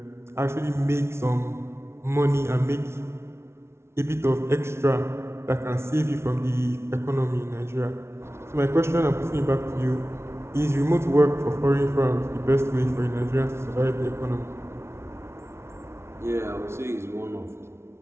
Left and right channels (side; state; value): left; late; 0.13 ms